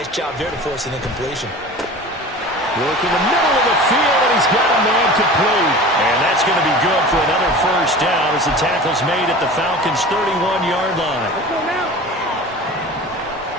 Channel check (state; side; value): normal; both; correlation 0.37